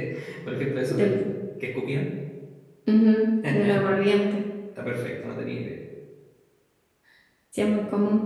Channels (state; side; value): identical; both; correlation 1.00